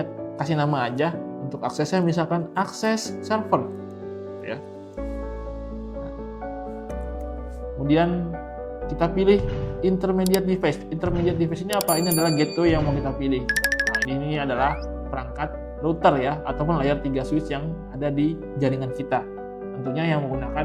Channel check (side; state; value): both; identical; correlation 1.00